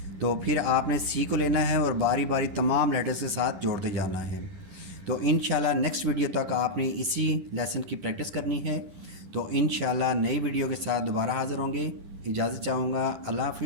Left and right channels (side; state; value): left; late; 11 ms